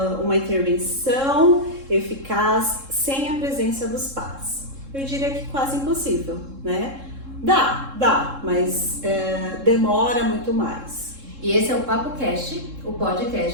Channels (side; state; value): left; late; 3.7 ms